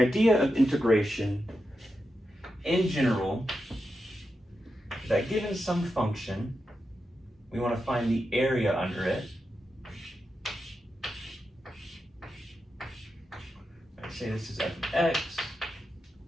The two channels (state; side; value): normal; both; correlation 0.88